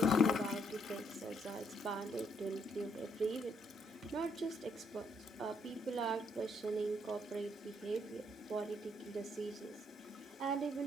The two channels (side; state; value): both; normal; correlation 0.72